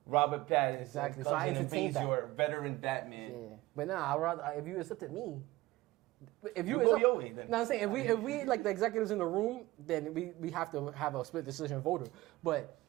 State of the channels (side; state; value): left; quieter; 18.6 dB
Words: Robert Pattinson Exactly, so comes I in and entertained beats that. your veteran Batman. yeah. But nah, I rather if you accepted me. If You you go accept, your way, then. No, I'm saying if we like the executives in the room, then we have to have a split decision voter. But